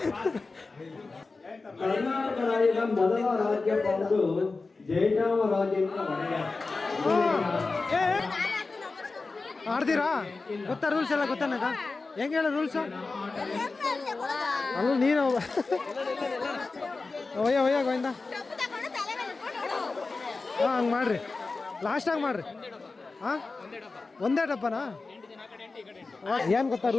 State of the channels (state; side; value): quieter; right; 3.8 dB